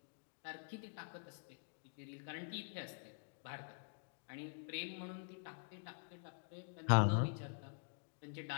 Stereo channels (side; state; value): right; silent; digital silence